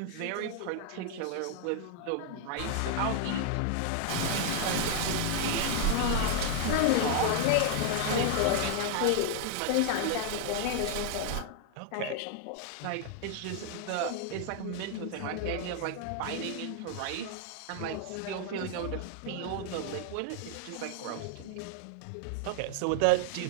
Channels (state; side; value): different; both; correlation 0.00